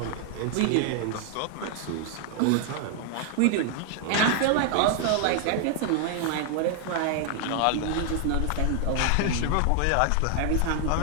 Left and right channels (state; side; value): different; both; correlation 0.00